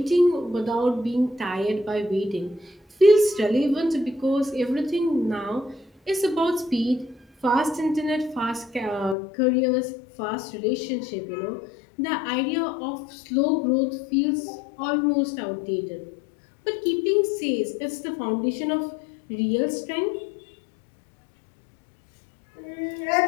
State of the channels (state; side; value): drops out; right; at 9.2 s